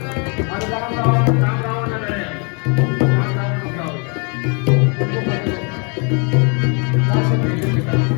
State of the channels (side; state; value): right; quieter; 34.7 dB